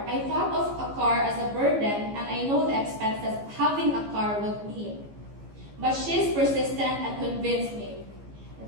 I thought of a car as a burden, and I know the expenses having a car would mean. But she's persistent and convinced me.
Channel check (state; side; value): late; left; 15 ms